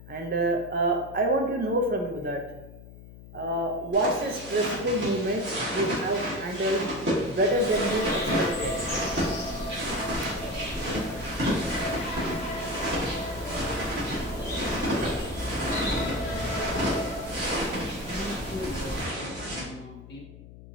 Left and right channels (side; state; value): left; noise; hum, 17 dB below the sound